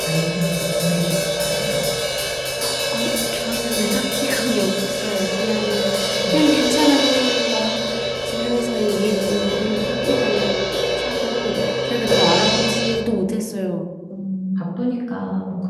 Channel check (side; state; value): both; identical; correlation 1.00